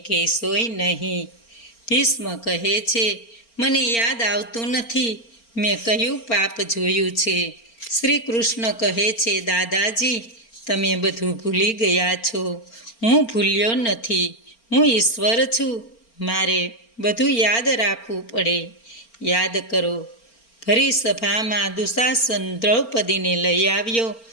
કહેશોય નહીં. ભીષ્મ કહે છે, મને યાદ આવતું નથી મેં કયું પાપ જોયું છે. શ્રી કૃષ્ણ કહે છે, દાદાજી, તમે બધું ભૂલી ગયા છો. હું ભૂલ્યો નથી, હું ઈશ્વર છું. મારે બધું યાદ રાખવું પડે. યાદ કરો, ભરી સભામાં દુશાસન દ્રૌપદીને લઈ આવ્યો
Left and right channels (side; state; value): right; late; 4.4 ms